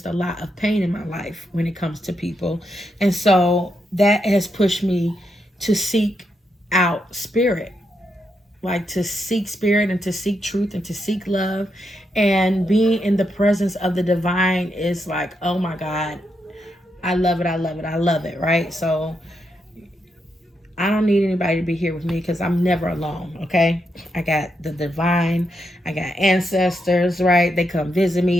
a lot of pain in my life when it comes to people. And so that has pushed me to seek out Spirit. Like to seek Spirit, and to seek truth, and to seek love. And being in the presence of the divine is like, oh my God, I love it, I love it, I love it, right? So I don't need anybody to be here with me because I'm never alone, okay? I got the divine, I got ancestors, right? They come visit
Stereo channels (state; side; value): normal; both; correlation 0.82